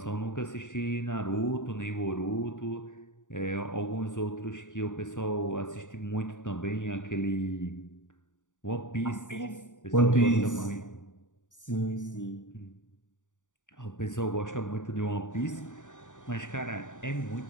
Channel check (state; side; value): late; right; 0.86 ms